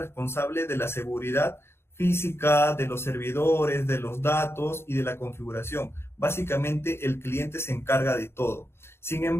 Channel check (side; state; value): right; late; 0.12 ms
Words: de la seguridad física, de los servidores, de los datos y de la configuración. Básicamente, el cliente se encarga de todo. Sin